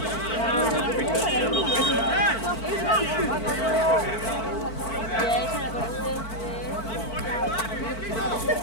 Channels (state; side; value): late; right; 4.5 ms